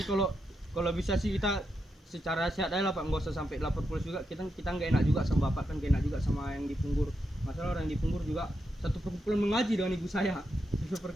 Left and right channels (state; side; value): normal; both; correlation 0.84